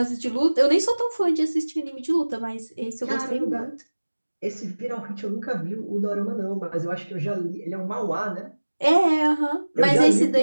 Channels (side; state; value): both; inverted; correlation -1.00